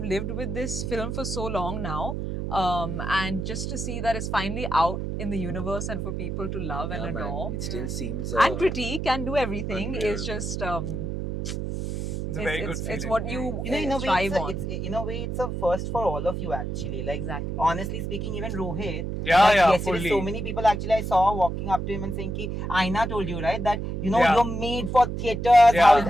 lived with this film for so long now. And just to see that it's finally out in the universe and for people to love and Yeah, man. adore. It still seems And critique and do everything unreal. is just It's a very good it's feeling. what you You know, in a way, strive on. in a way, it's a first for all of you actually. Like, Exactly. honestly speaking, even Rohit. Yeah, like, yeah, yesterday, fully. so many people actually I saw walking up to him and saying, "Ki Aina told you right that you know Yeah. you're made for theaters." Yeah.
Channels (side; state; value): right; noise; hum, 3 dB below the sound